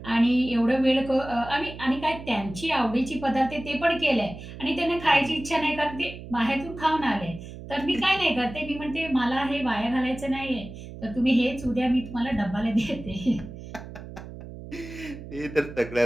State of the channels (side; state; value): right; noise; hum, 13 dB below the sound